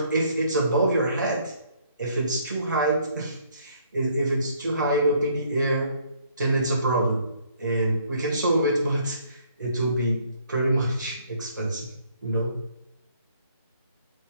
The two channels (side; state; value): both; inverted; correlation -0.64